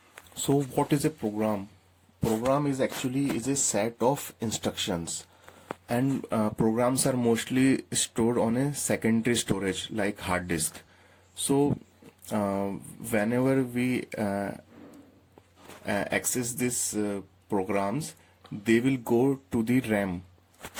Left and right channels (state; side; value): identical; both; correlation 1.00